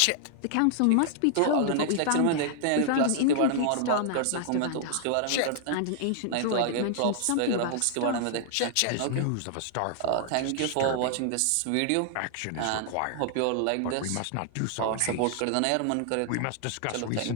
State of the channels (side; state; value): both; different; correlation -0.01